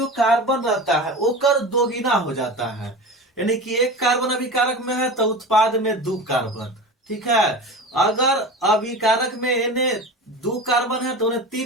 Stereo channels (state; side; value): normal; both; correlation 0.30